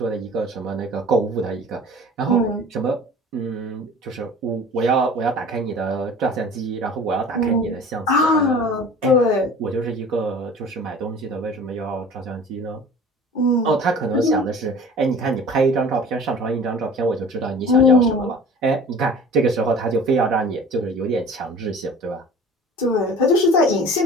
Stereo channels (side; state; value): both; normal; correlation 0.43